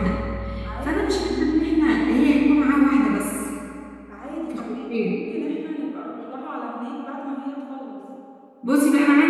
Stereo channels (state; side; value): identical; both; correlation 1.00